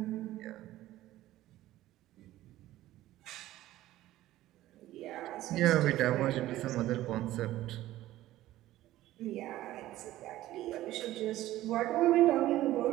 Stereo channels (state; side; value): quieter; left; 15.1 dB